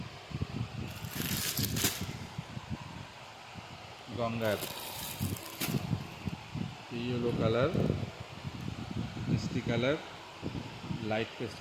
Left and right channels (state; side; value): identical; both; correlation 1.00